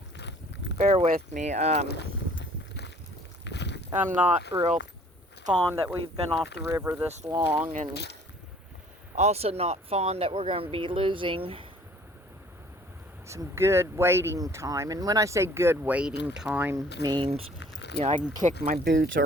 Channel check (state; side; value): normal; both; correlation 0.54